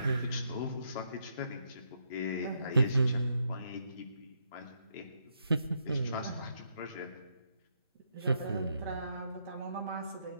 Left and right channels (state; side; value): inverted; both; correlation -0.77